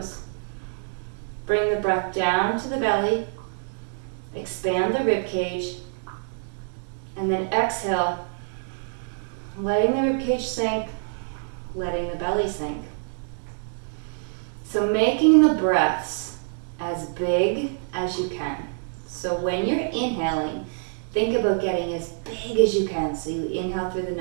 Bring the breath down to the belly. Expand the rib cage. And then exhale, letting the rib cage sink, letting the belly sink. So making the breaths as big as you can. So when you're inhaling, think about getting as big as you can. So you inhale through the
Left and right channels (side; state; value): left; silent; 61 dB below the other